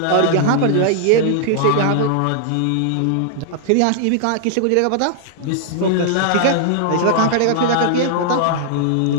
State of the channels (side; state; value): both; different; correlation -0.01